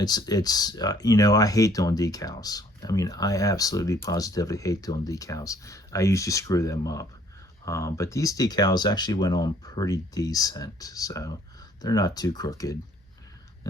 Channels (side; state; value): both; normal; correlation 0.60